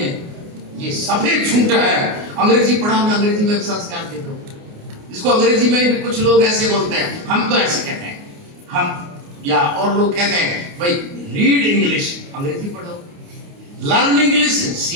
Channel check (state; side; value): late; left; 29 ms